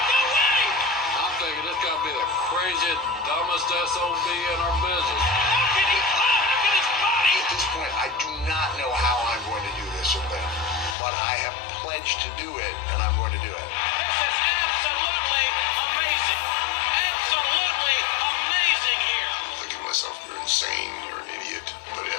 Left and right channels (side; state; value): right; drops out; at 11.0 s